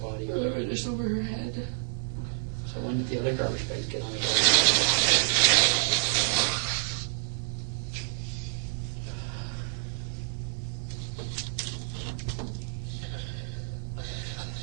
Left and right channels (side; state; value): left; silent; 58 dB below the other